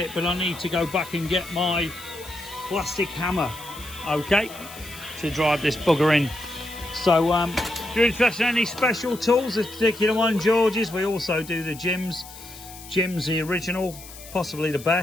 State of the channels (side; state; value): left; noise; hiss, 16 dB below the sound